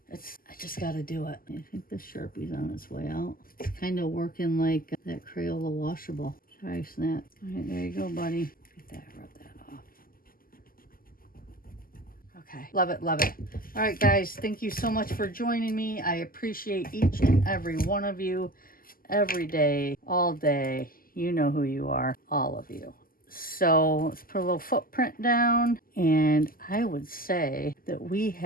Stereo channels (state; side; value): late; right; 0.42 ms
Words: I just got to do it. I think the Sharpie's on its way out. It's kind of working like that Crayola washable. Sorry, Snap. All right, there you go, buddy. Get that, rub that off. Okay, love it, love it. All right, guys, thank you so much for joining me. I appreciate each and every one of you every day, all day. You know who you are, all of you. So let's put a little footprint down, and I would say that we